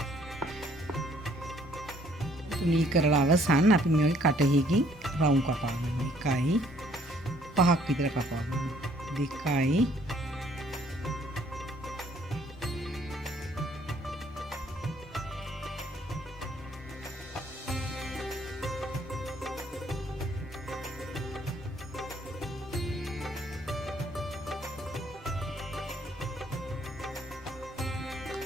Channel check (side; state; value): both; normal; correlation 0.62